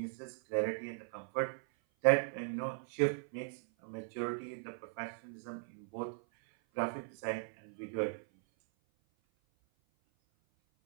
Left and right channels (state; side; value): silent; left; 52 dB below the other